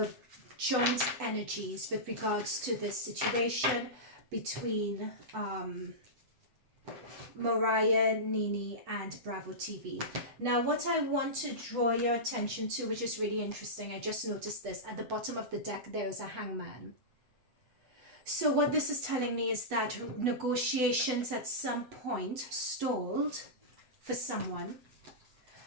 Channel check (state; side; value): late; left; 8.1 ms